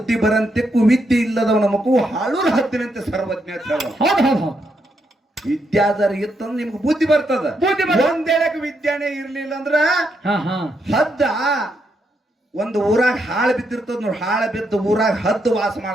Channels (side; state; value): both; normal; correlation 0.79